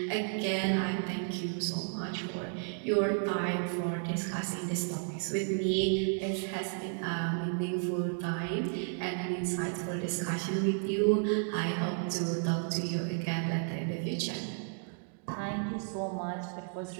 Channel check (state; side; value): silent; left; 56 dB below the other